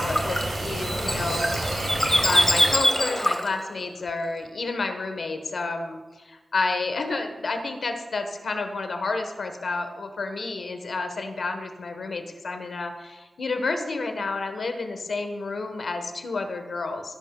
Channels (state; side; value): normal; both; correlation 0.92